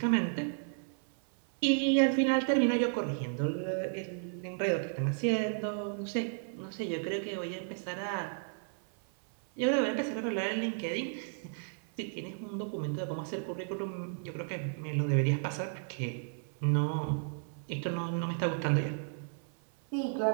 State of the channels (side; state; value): left; silent; 56 dB below the other